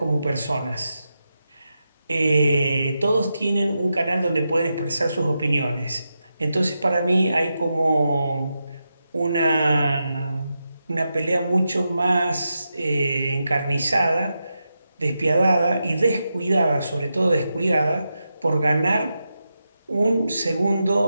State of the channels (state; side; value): inverted; both; correlation -0.88